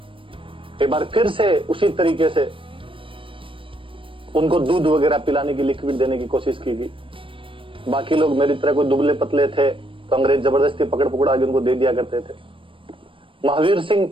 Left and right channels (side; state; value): left; late; 0.25 ms